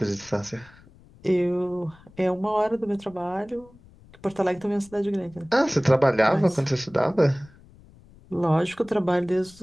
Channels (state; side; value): noise; left; rumble, 25 dB below the sound